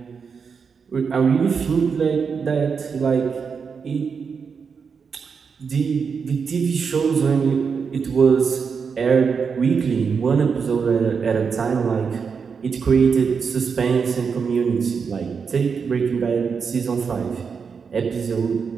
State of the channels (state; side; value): quieter; left; 5.9 dB